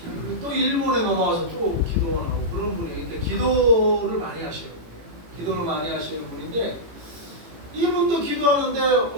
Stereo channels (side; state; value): left; late; 18 ms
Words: 또 일본에 넘어와서 또 기도하고 그런 분이 그러니까 기도를 많이 하시는 분이에요. 기도를 많이 하시는 분인데 이분도 기도하는데